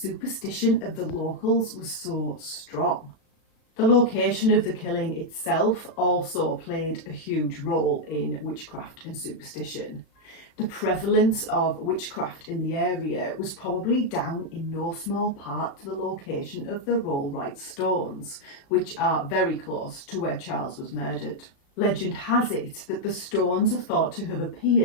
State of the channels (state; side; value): late; right; 36 ms